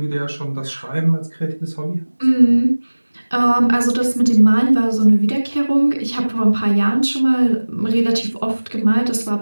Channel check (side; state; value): both; inverted; correlation -1.00